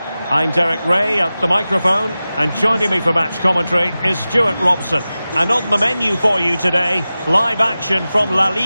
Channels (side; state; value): both; inverted; correlation -0.96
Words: I'm Derek Ray at the microphone, and joining me for match commentary is Stuart Robson. And on the menu for you today, live action from La